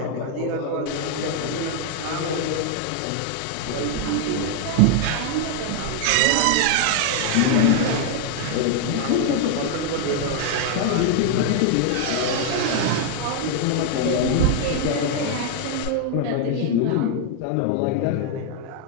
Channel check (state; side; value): different; both; correlation 0.00